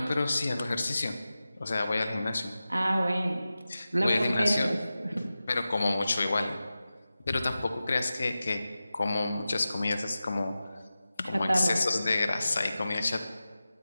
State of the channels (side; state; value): both; inverted; correlation -0.94